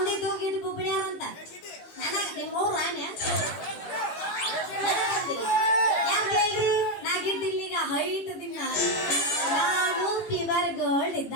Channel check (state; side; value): late; right; 18 ms